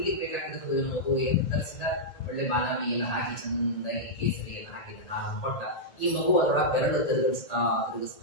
ಬೇಕಾಗಿರ್ತದೆ ಮಗು. ಏನು ತರಿಸಿದ? ಒಳ್ಳೆ ಬಾದಾಮಿ ಎಲ್ಲ ಹಾಕಿ ಚಂದಾಗಿ ಕೇಸರಿ ಎಲ್ಲ ಹಾಕಿದ ಹಾಲು ಕೊಟ್ಟ. ಈ ಮಗು ಅದರೊಳಗೆ ಬೆರಳು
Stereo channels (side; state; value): right; late; 1.8 ms